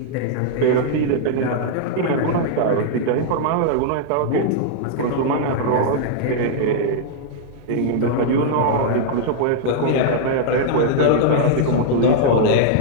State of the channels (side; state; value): both; different; correlation -0.01